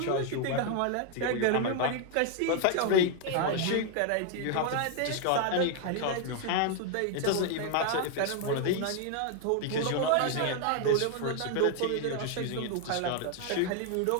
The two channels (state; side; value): different; both; correlation 0.00